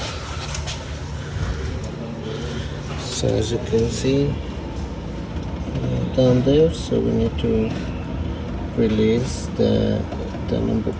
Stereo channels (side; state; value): both; identical; correlation 1.00